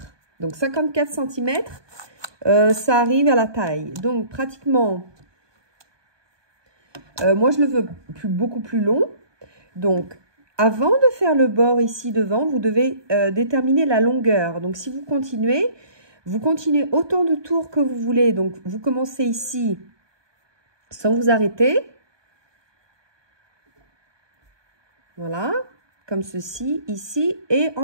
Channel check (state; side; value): late; left; 1.2 ms